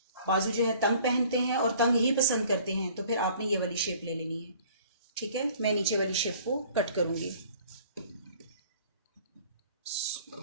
बाजू जो है तंग पहनते हैं और तंग ही पसंद करते हैं तो फिर आपने ये वाली शेप ले लेनी है, ठीक है। मैं नीचे वाली शेप को कट करूंगी।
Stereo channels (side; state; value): both; inverted; correlation -0.52